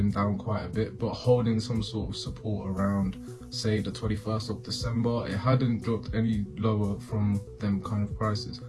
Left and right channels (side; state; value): both; identical; correlation 1.00